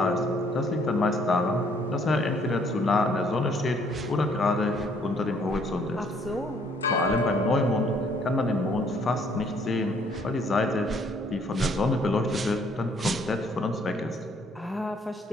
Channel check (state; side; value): normal; both; correlation 0.64